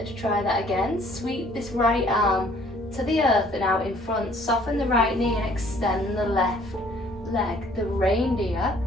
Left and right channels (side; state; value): both; normal; correlation 0.58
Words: try that again. Sweep this right arm to the earth and out in front. Soften the right knee and extend the left leg, the reindeer.